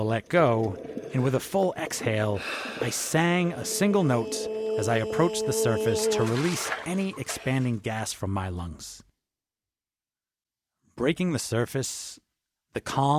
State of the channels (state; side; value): identical; both; correlation 1.00